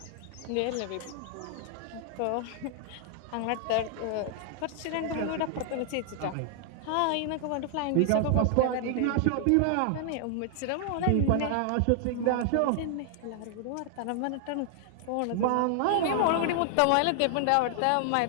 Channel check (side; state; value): both; different; correlation -0.01